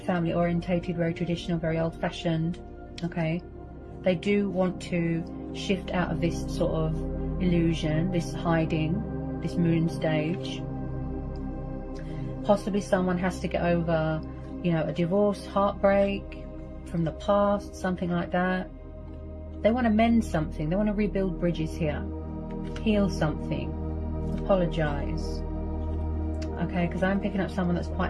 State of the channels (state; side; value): identical; both; correlation 1.00